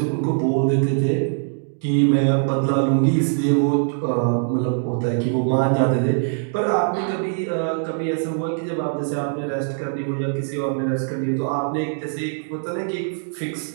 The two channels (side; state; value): left; silent; digital silence